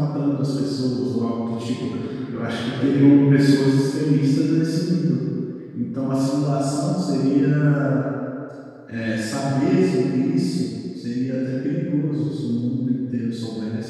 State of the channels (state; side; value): identical; both; correlation 1.00